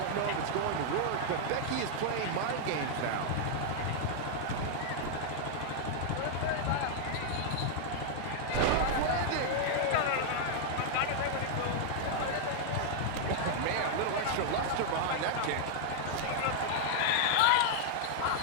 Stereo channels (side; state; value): both; different; correlation -0.01